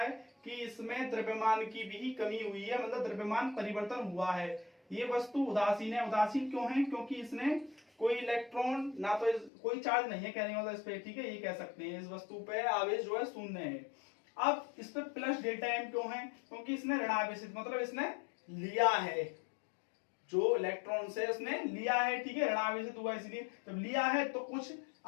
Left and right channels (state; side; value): drops out; right; at 9.5 s